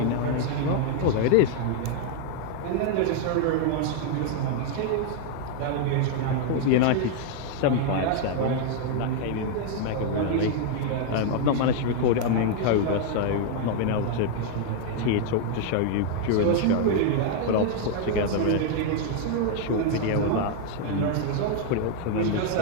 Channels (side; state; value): both; different; correlation 0.00